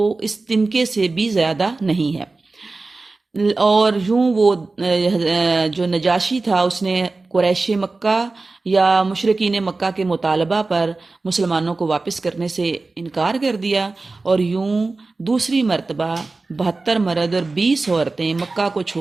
اس تنکے سے بھی زیادہ نہیں ہے۔ اور یوں وہ جو نجاشی تھا اس نے قریش مکہ یا مشرکین مکہ کے مطالبہ پر مسلمانوں کو واپس کرنے سے انکار کر دیا، اور یوں دوسری مرتبہ 72 مرد اور 20 عورتیں مکہ کو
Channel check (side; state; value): left; quieter; 3.5 dB